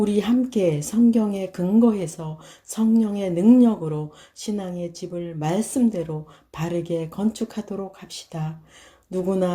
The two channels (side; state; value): both; identical; correlation 1.00